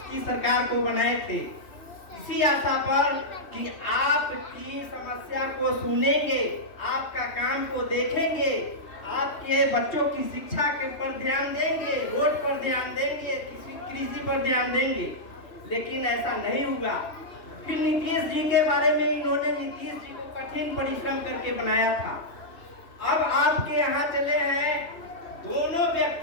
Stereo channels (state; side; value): late; right; 3.1 ms